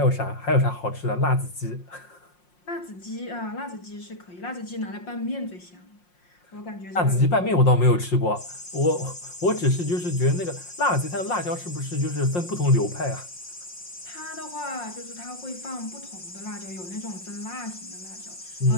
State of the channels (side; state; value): right; late; 5.6 ms